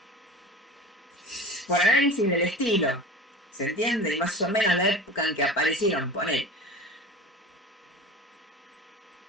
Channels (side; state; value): both; normal; correlation 0.35